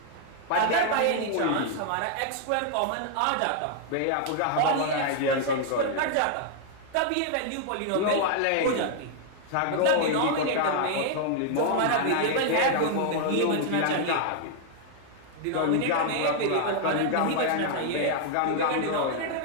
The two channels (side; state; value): both; different; correlation 0.00